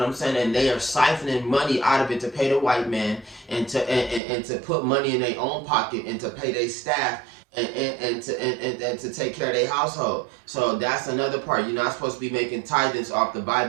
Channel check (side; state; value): left; drops out; at 4.2 s